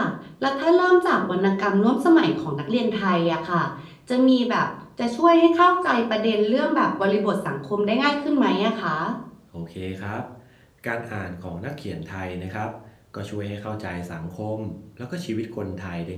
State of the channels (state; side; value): identical; both; correlation 1.00